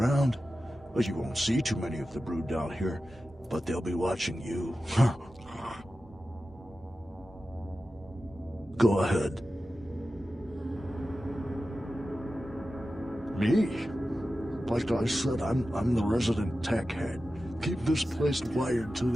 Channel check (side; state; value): both; normal; correlation 0.93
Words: But you won't see too many of the brood down here. But they'll be watching you. Go ahead. Me? Like I said, I'm the resident tech head. Keep this place wired to